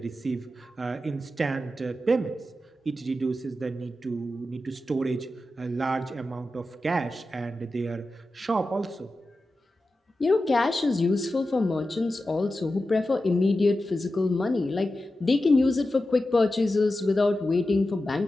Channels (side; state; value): both; normal; correlation 0.92